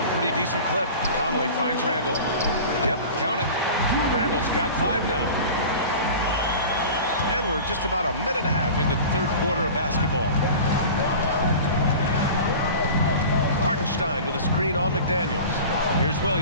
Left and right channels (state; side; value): inverted; both; correlation -0.37